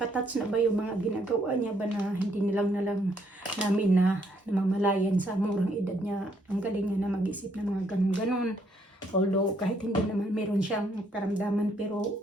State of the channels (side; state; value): both; normal; correlation 0.70